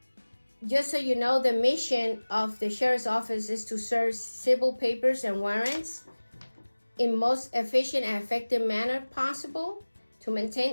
just so you know, the mission of the sheriff's office is to serve civil papers and warrants in most efficient and effective manner possible, to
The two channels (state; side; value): inverted; both; correlation -1.00